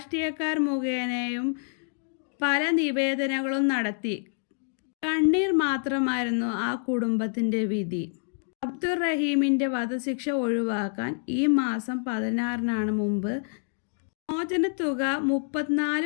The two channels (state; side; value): silent; right; 60 dB below the other